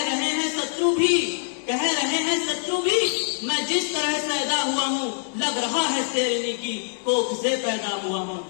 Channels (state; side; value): silent; right; digital silence